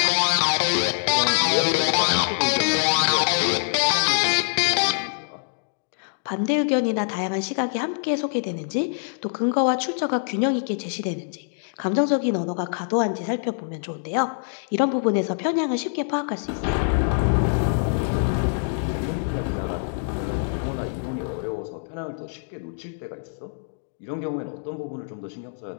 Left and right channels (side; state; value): right; silent; digital silence